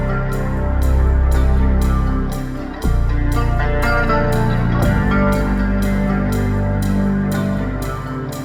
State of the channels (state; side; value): identical; both; correlation 1.00